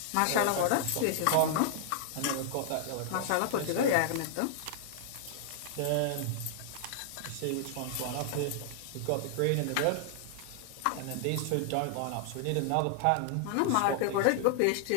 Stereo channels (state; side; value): different; both; correlation -0.01